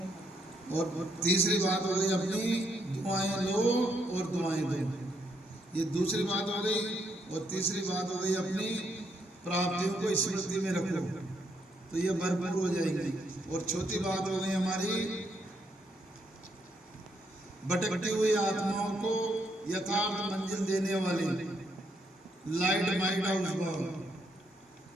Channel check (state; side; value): normal; both; correlation 0.75